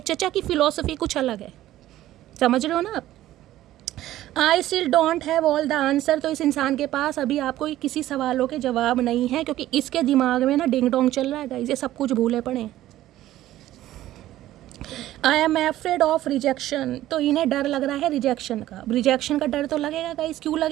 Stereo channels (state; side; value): quieter; left; 14.3 dB